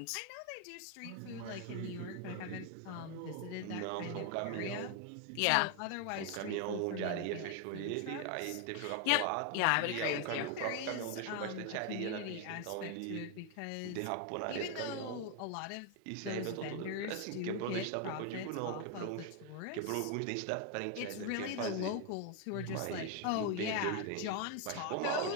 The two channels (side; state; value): both; different; correlation 0.01